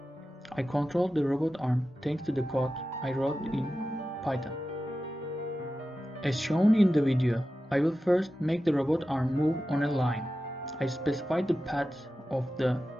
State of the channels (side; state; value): both; normal; correlation 0.93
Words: I controlled the robot arm thanks to the code I wrote in Python. As shown in the video, I will first make the robot arm move on a line. I specified the path of the